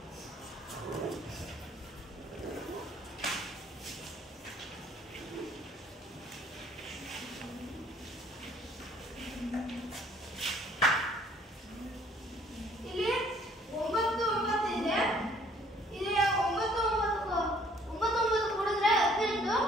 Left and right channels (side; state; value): both; normal; correlation 0.59